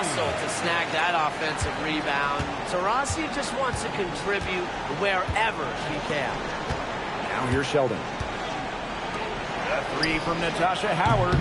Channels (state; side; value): identical; both; correlation 1.00